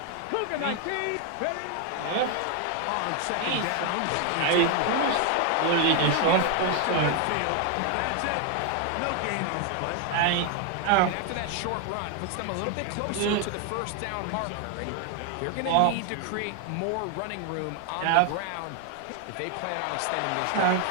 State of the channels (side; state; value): both; different; correlation 0.00